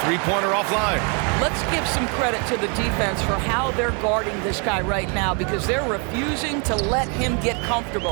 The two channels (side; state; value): left; quieter; 35.5 dB